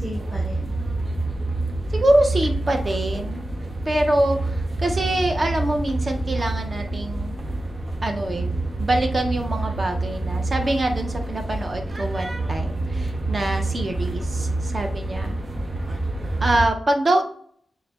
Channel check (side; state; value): both; normal; correlation 0.93